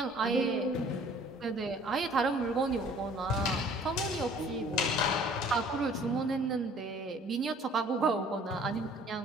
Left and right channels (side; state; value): both; normal; correlation 0.53